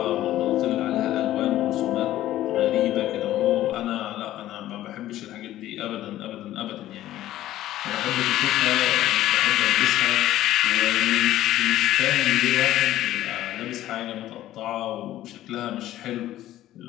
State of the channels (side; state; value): right; quieter; 14.0 dB